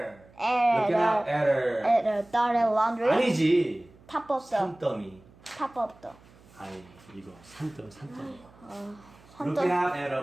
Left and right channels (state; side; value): noise; right; hum, 26 dB below the sound